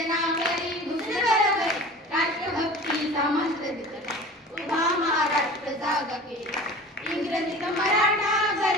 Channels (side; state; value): both; normal; correlation 0.39